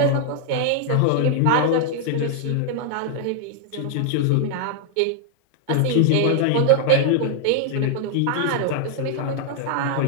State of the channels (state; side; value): different; both; correlation 0.00